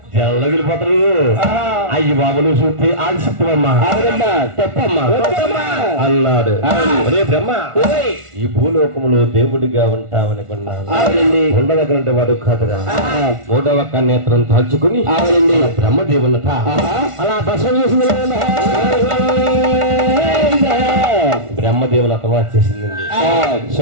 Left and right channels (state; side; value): late; left; 1.4 ms